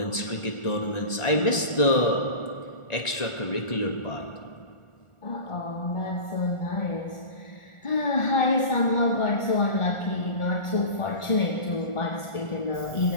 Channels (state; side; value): late; right; 1.4 ms